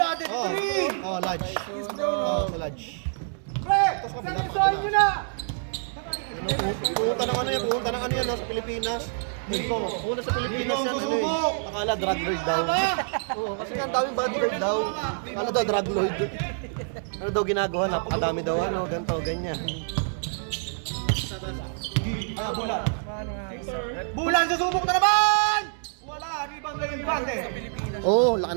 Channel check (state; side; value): silent; left; digital silence